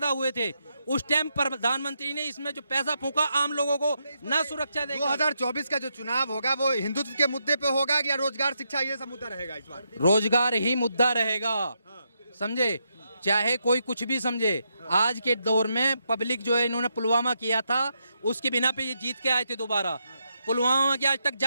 हुए थे, उस टाइम प्रधानमंत्री ने इसमें जो पैसा फूका आम लोगों को न सुरक्षा देगा। 2024 का जो चुनाव होगा वो हिंदुत्व के मुद्दे पे होगा या रोजगार शिक्षा ये सब मुद्दा रहेगा इस बार? रोजगार ही मुद्दा रहेगा, समझे, चाहे कोई कुछ भी समझे। आज के दौर में पब्लिक जो है, इन्होंने पुलवामा किया था, उसके बिना पे ये जीत के आए थे दोबारा। पुलवामा की आज तक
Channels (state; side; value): inverted; both; correlation -0.82